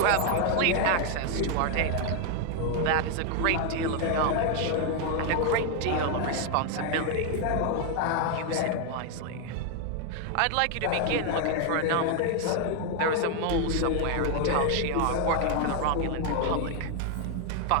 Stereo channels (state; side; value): different; both; correlation 0.00